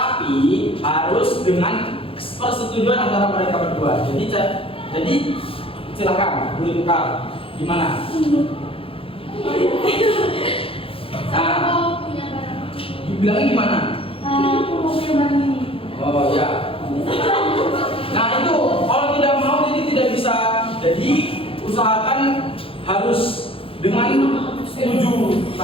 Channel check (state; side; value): late; right; 0.27 ms